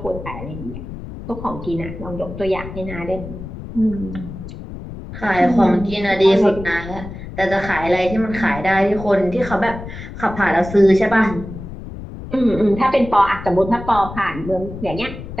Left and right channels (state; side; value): noise; left; rumble, 11 dB below the sound